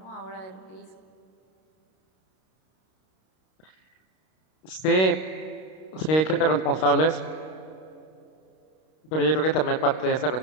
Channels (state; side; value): late; right; 32 ms